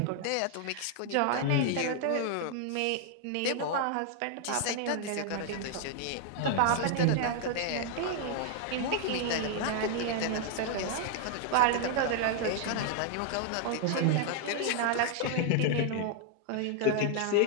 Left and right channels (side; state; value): both; different; correlation 0.00